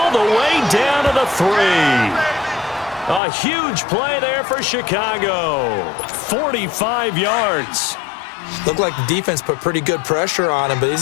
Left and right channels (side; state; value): right; drops out; at 3.2 s